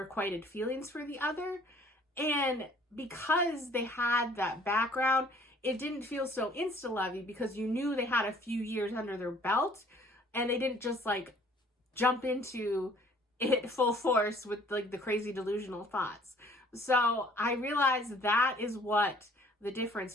feelings for the other. And because they had that background, it didn't feel so insta-lovey because you knew they had a few years under their belt, and they didn't just, like, jump into it full force with, like, the crazy delusional thoughts. So I realized that is what the difference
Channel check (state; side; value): normal; both; correlation 0.56